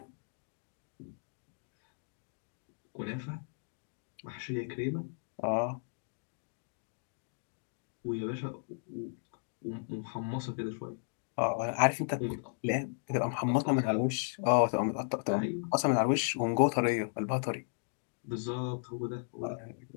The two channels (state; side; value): silent; right; digital silence